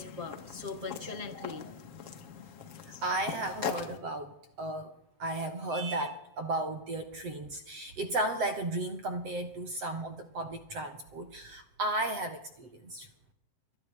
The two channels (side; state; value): left; late; 7.8 ms